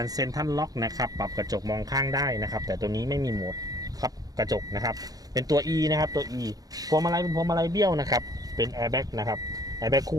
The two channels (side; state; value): left; late; 0.18 ms